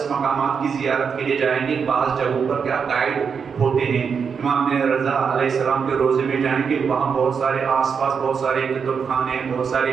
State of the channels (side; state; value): left; quieter; 6.3 dB